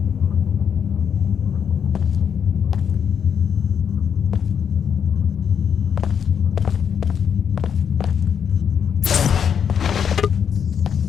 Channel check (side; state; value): right; quieter; 7.6 dB